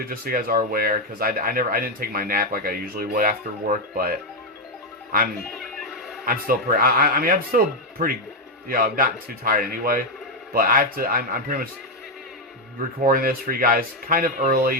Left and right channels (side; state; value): both; normal; correlation 0.04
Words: just so you guys are aware, because I didn't take my nap like I usually would after work, but I'm still pretty. I mean, I'm still pretty. You know, I'm not too tired anyway, but I have to. I'm pretty much recording this for you guys kind of